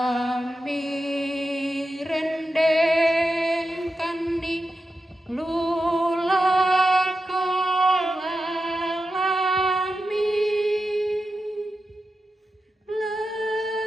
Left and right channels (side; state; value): both; normal; correlation 0.90